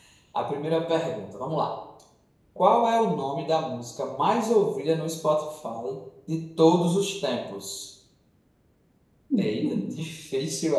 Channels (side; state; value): both; identical; correlation 1.00